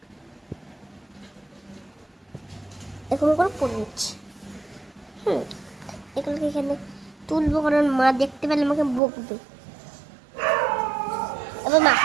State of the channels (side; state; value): left; drops out; at 9.0 s